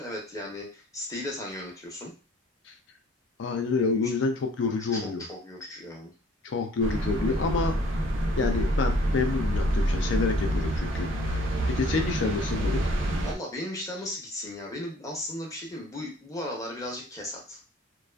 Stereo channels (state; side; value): normal; both; correlation 0.56